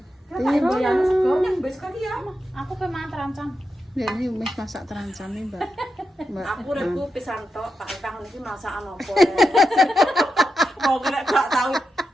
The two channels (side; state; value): both; normal; correlation 0.88